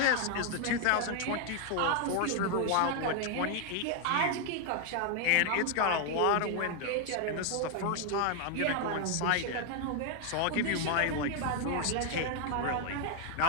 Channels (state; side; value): different; both; correlation 0.00